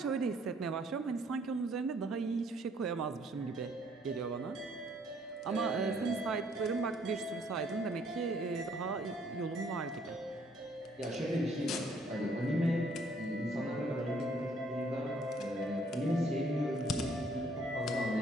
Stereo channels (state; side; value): normal; both; correlation 0.64